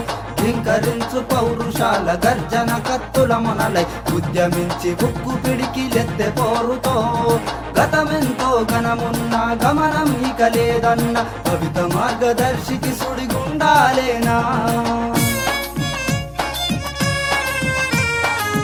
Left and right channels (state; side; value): identical; both; correlation 1.00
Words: ధింకరించు పౌరుషాల గర్జన కత్తుల మొనలై ఉద్యమించి ఉక్కు పిడికిలెత్తె పోరుతో గతమెంతో ఘనమున్న గమనం ఇక లేదన్న కవిత మార్గదర్శికి సుడిగుండాలేనా.